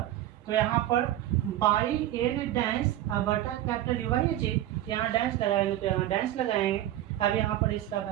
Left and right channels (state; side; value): quieter; left; 13.5 dB